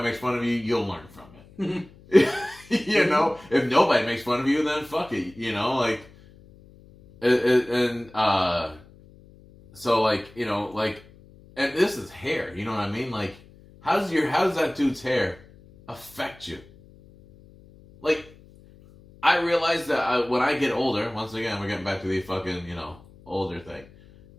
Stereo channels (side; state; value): left; noise; hum, 24 dB below the sound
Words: makes fun of you, you'll learn from it. If nobody makes fun of you, then fuck it. And this is hair. You know what I mean? Like, how does that dude's hair affect you? Like, I realize that when I get older, once again, we're getting back to the fucking, older thing.